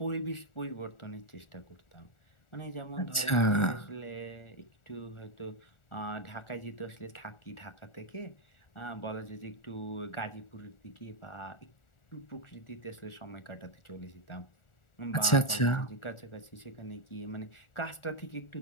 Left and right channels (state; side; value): late; right; 1.4 ms